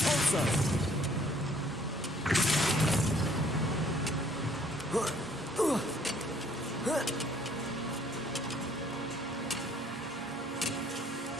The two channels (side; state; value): both; normal; correlation 0.61